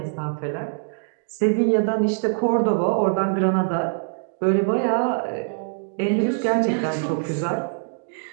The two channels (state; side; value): silent; left; digital silence